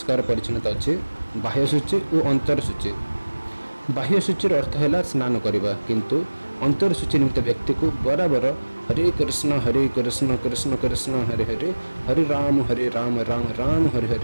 परिच्छन्नता अच्छे, बाह्य शुचि और अंतर शुचि। बाह्य शुचिर अर्थ है स्नान करने, किंतु अंतर शुचि निमित्त व्यक्ति को बराबर हरे कृष्ण कृष्ण कृष्ण हरे हरे हरे राम राम राम हरे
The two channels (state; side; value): inverted; both; correlation -1.00